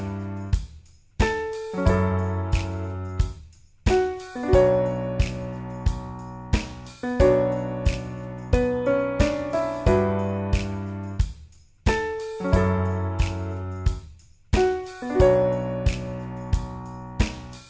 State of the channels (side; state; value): both; identical; correlation 1.00